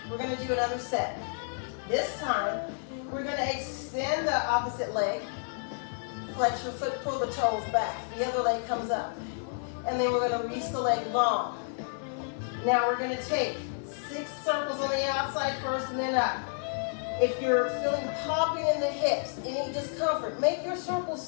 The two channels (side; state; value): right; silent; 58 dB below the other